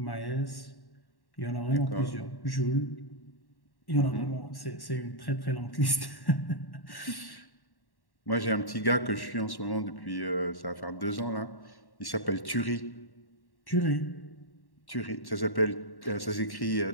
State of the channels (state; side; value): late; right; 1.1 ms